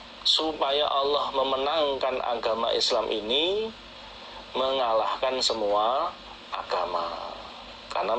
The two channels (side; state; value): both; identical; correlation 1.00